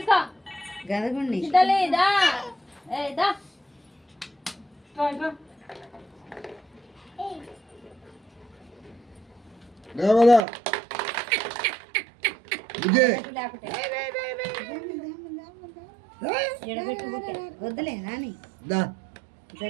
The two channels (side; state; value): left; drops out; at 10.4 s